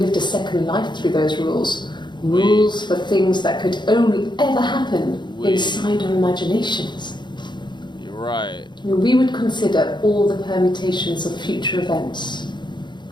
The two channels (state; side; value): late; right; 0.22 ms